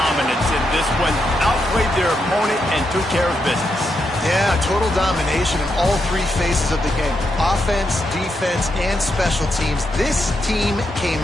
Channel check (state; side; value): normal; both; correlation 0.82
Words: in this one. Outplayed their opponent and took care of business. Yeah, total domination in all three phases of the game. Offense, defense, and special teams. This team came